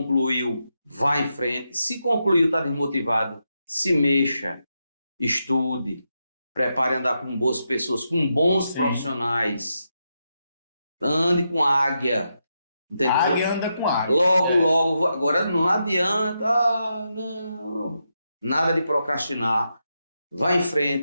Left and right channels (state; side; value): inverted; both; correlation -0.85